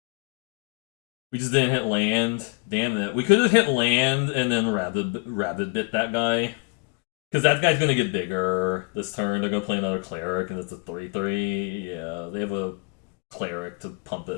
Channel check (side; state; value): right; quieter; 30.0 dB